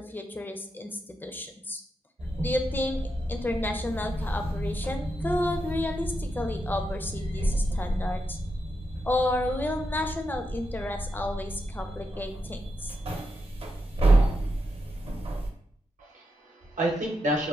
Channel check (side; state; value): both; normal; correlation 0.85